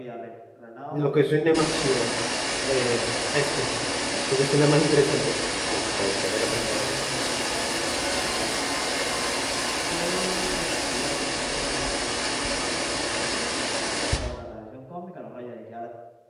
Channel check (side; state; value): both; identical; correlation 1.00